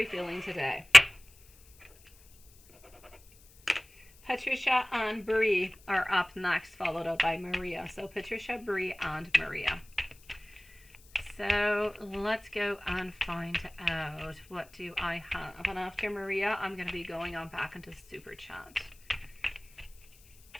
feeling today? Patricia and Bree are up next, followed up by Maria. So Patricia, Bree, and Maria. So let's go and find out what do I have. And after Maria, I'm going to be going on back into Super Chat.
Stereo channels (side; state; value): left; noise; hiss, 26 dB below the sound